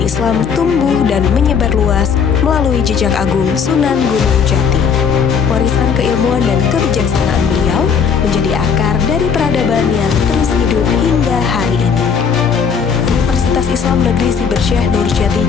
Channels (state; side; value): quieter; right; 6.5 dB